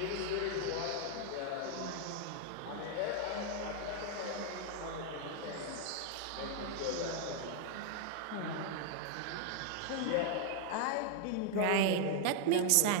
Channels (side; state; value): both; different; correlation 0.00